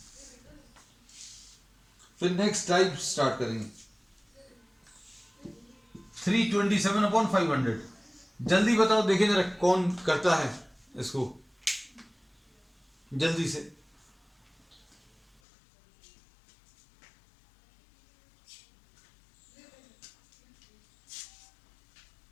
फिर नेक्स्ट टाइप स्टार्ट करेंगे। 327/500, जल्दी बताओ देखें जरा कौन करता है इसको जल्दी से।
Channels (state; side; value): drops out; right; at 15.4 s